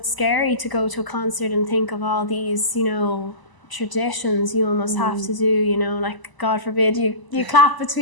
scary to go to a concert and think of all these traditions you almost have to do, like God forbid you clap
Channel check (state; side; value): late; right; 1.0 ms